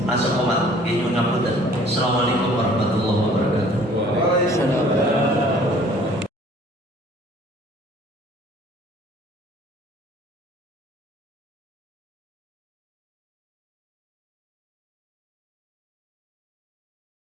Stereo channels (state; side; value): normal; both; correlation 0.54